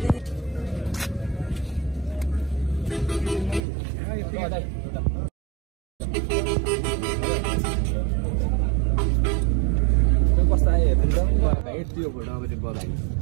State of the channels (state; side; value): drops out; left; at 3.6 s